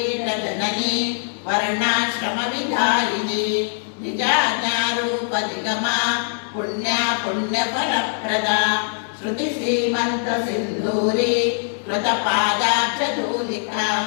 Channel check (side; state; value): right; silent; digital silence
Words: वर्णाश्रमविधायिनी निजाज्ञारूपनिगमा पुण्या पुण्यफलप्रदा श्रुतिसीमन्तसिन्धूरी कृतपादाब्जधूलिका